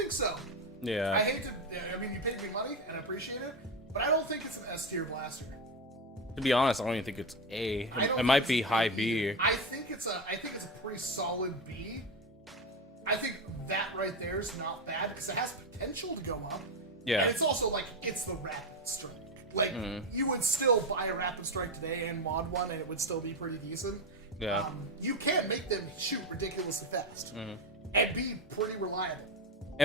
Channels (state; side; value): normal; both; correlation 0.13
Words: so. Yeah. I hate to, I mean, you paid me money and I appreciate it, but I don't think it's an S tier blaster. To be honest, I don't even think it's A. It might be high B. I think it's a pretty solid B. I think that right there is not bad because it has potential to go up. Yeah. And it's also like, it's the Rapid Strike. Like, you would still buy a Rapid Strike today and mod one and it would still be pretty decent. Yeah. You can make them shoot ridiculously fast and be pretty reliable.